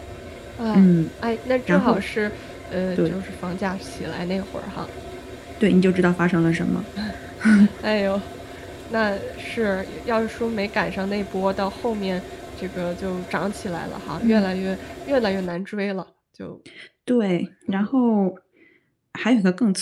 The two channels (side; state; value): both; identical; correlation 1.00